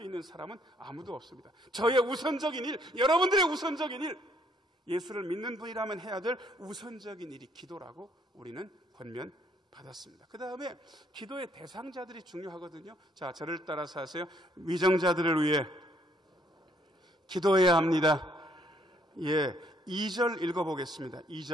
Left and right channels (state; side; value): normal; both; correlation 0.67